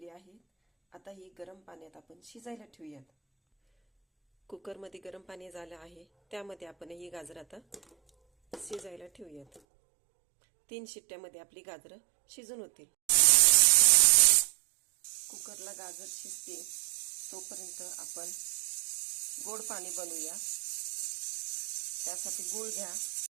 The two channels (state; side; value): drops out; left; at 9.6 s